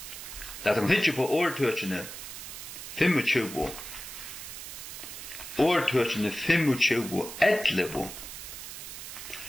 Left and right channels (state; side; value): noise; right; hiss, 10 dB below the sound